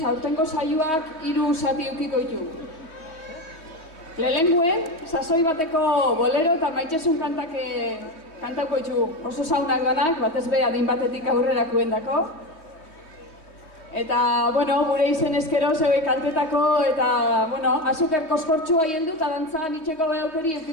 aurtengo saioak 3 zati ukiko ditu. Lehenguen, sasoi bateko bolero eta maitxesun kantauko ditu oso saunak danak, batez be adin batetik aurrerakuen dako. Eta, bueno, gure izen eskero zeue kantetako eta, bueno, azuker koskortxua hieldu eta dantzan itxeko behaukeri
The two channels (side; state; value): right; late; 3.1 ms